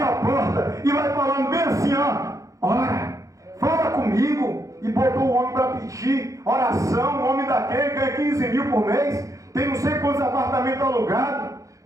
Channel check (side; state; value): left; late; 0.16 ms